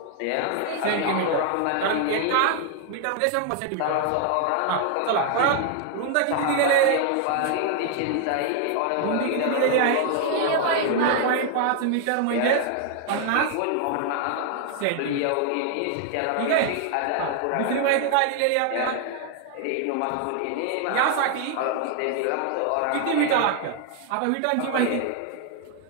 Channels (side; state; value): both; different; correlation 0.00